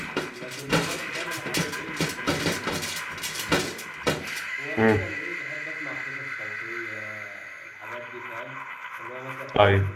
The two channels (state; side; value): identical; both; correlation 1.00